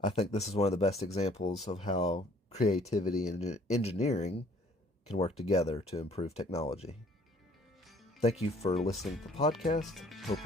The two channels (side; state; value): both; normal; correlation 0.57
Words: I think this is one of the best examples of how creativity and engineering can work together to improve technology. Thank you for listening to the podcast. Hope